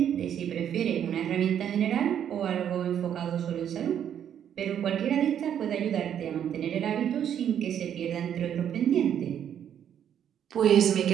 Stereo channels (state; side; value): quieter; left; 9.4 dB